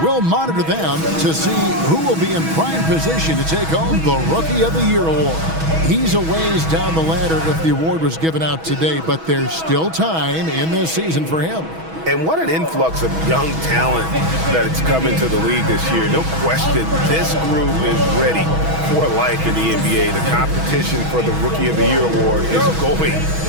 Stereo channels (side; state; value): left; late; 6.2 ms